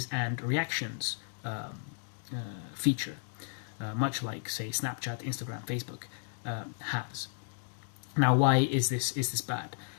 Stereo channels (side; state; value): right; silent; 55 dB below the other